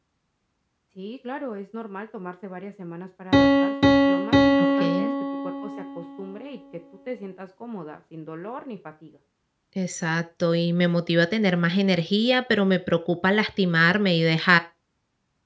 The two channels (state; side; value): identical; both; correlation 1.00